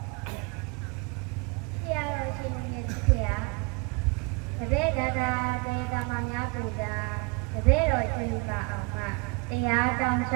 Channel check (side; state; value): left; quieter; 28.7 dB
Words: ဆရာတော်ရှင်မြတ်ကြီးဗျာတပည့်တော်တရားကမှများပူတာတပည့်တော်ရွှေယူပါအောင်မတရားတောင်းလျ